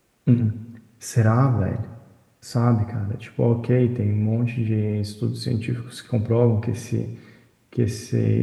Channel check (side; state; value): both; identical; correlation 1.00